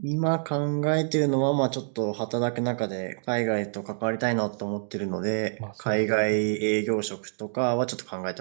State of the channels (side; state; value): left; silent; digital silence